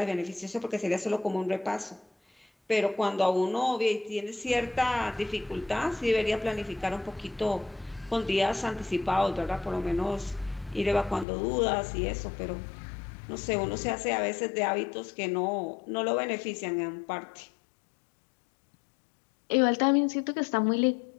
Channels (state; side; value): drops out; right; at 11.2 s